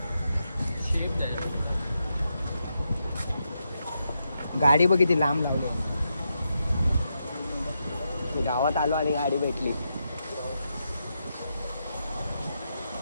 गाडी बघ किती लांब लावली. गावात आलो आणि गाडी भेटली.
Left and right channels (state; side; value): inverted; both; correlation -0.84